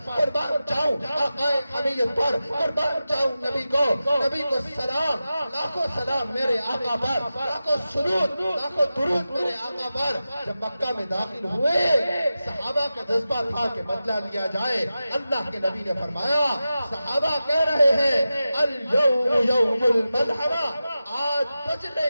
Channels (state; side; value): inverted; both; correlation -0.93